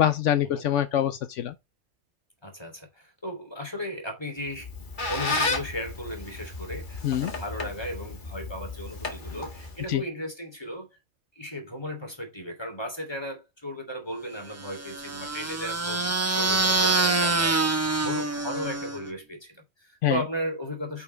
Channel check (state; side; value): normal; both; correlation -0.05